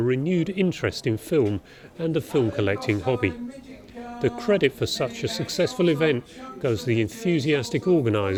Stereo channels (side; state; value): both; identical; correlation 1.00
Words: renewed interest in film and the film collecting hobby. The credit for such a successful event goes to the enthusiastic